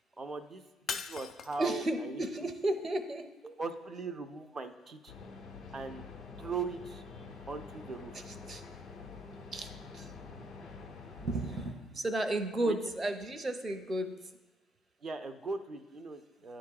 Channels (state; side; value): normal; both; correlation 0.74